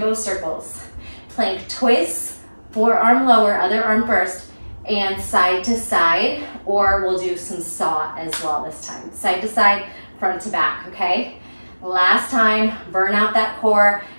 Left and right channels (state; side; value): inverted; both; correlation -1.00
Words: circles. Plank twists, forearm lower, other arm burst, and side to side, or we'll do some saw as well this time. Side to side, front to back, okay? Last time, burn out that core,